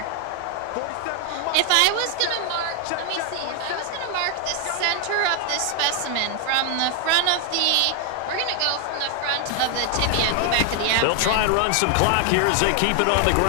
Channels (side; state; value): both; different; correlation 0.00